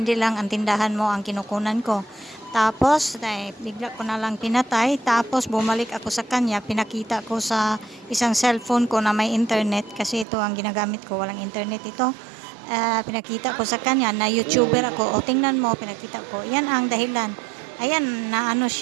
lang ang tindahan mo ang kinukunan ko. Tapos, bigla ko na lang pinatay, tapos bumalik ako sa kanya, pinakita ko sa isang cellphone ko na may internet, kasi ito ang ginagamit ko, walang internet ito. Pinakita ko sa kanya na YouTuber ako, tingnan mo, pinakita ko, yan ang dahilan. Ayan,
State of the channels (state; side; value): drops out; left; at 10.2 s